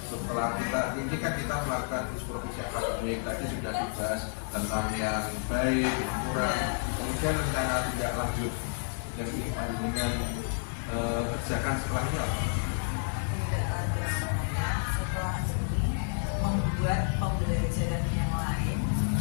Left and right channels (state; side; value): silent; right; digital silence